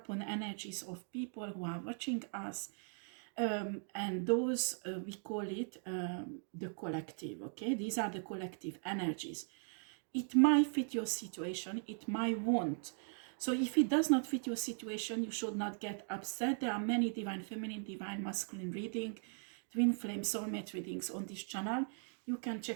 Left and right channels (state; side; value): silent; left; 52 dB below the other